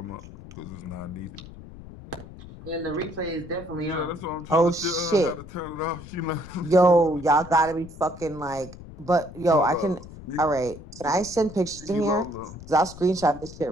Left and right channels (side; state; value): left; noise; rumble, 16 dB below the sound